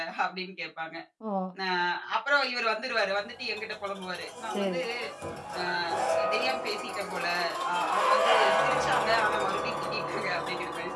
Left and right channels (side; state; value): both; identical; correlation 1.00